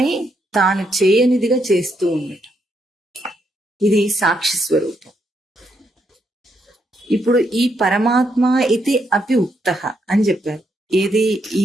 తాను చేయనిదిగా చేస్తూ ఉండటం. ఇది సాక్షి స్వరూపం. ఇప్పుడు ఈ పరమాత్మ ఇది అపి ఉక్త అని చెప్పారు. ఏది? ఈ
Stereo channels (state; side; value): normal; both; correlation 0.78